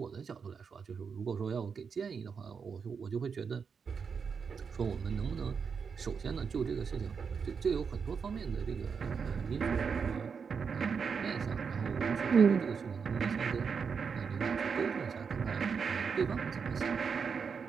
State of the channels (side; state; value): left; quieter; 6.0 dB